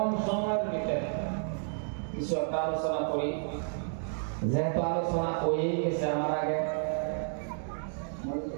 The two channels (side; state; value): left; silent; digital silence